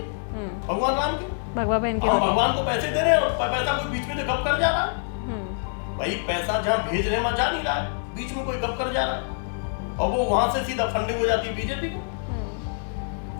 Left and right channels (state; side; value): silent; right; digital silence